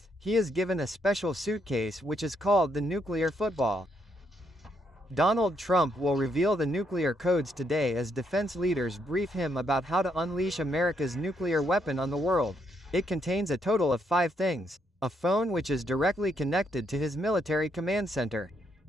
he is given a special suitcase which is called the nuclear football. Donald Trump will reveal the nuclear codes today as defense leaders brief him about how to unleash America's nuclear weapon on the world. It contains a total of 5 things. A phone which is directly connected to his military command center.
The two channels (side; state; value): both; normal; correlation 0.76